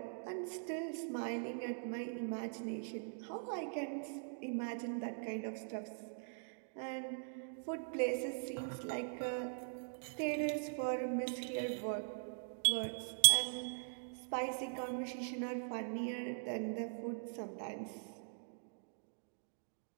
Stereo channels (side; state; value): left; silent; digital silence